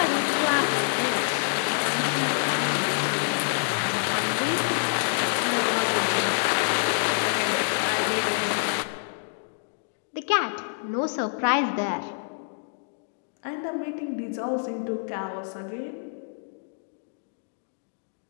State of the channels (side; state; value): right; silent; digital silence